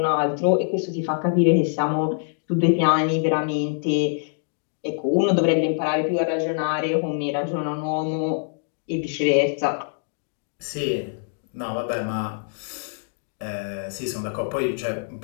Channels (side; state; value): right; silent; digital silence